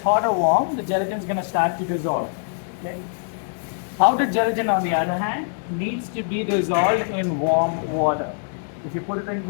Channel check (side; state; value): right; silent; digital silence